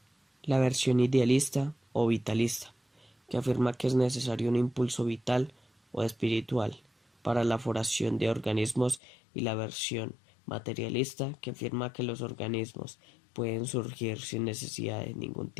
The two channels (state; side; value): drops out; right; at 9.0 s